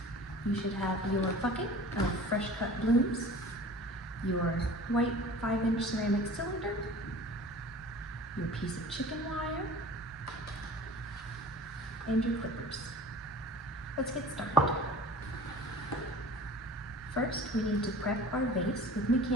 You should have your bucket of fresh cut blooms, your white 5-inch ceramic cylinder, your piece of chicken wire, and your clippers. Let's get started. First, we need to prep our vase with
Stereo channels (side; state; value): both; normal; correlation 0.42